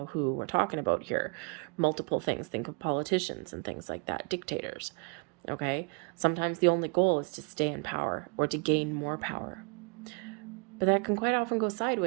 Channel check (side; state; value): left; quieter; 34.7 dB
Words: who we're talking about here. Multiple things. Think of politicians and things like that, dictators. Okay? Sometimes the only goal is to stay in power or to gain more power. But that can quite often go